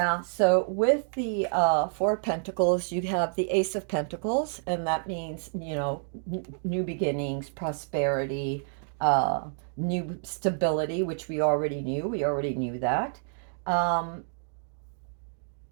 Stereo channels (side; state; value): left; silent; digital silence